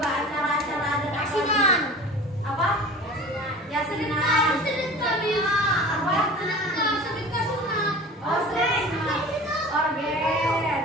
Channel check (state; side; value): normal; both; correlation 0.39